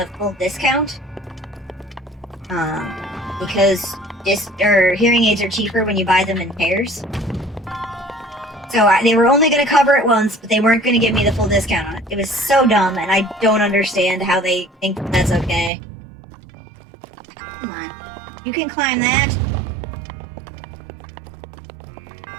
full discount. Because hearing aids are cheaper when you buy them in pairs. So they were only going to cover it once, but they weren't going to give me the full discount on it. It was so dumb, and I don't understand how they think that's okay. Come on. You can climb that.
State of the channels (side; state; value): left; drops out; at 15.7 s